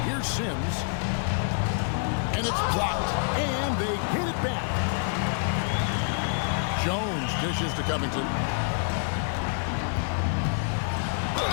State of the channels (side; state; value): right; silent; 60 dB below the other